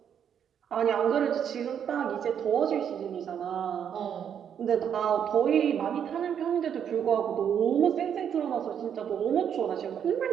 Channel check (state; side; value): quieter; left; 8.5 dB